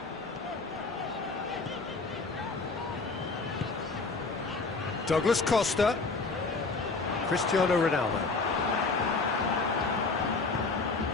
Douglas Costa. Cristiano Ronaldo.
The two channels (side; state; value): right; quieter; 3.9 dB